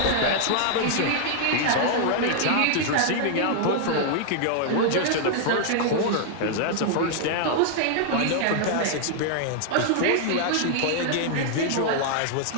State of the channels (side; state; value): both; different; correlation -0.01